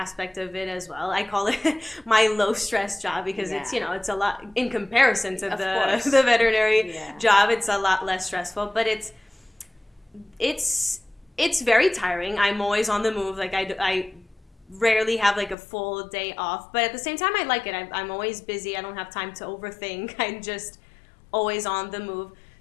of it as well. I call it my low stress job, because it's a lot in comparison to the veterinary job. It's a lot less stressful, but it's very tiring. I'm always on the move. Like I rarely have like a full day off, but at the same time I like it. I'm always busy. I don't have time to overthink. I'm just always on the move.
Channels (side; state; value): right; drops out; at 15.6 s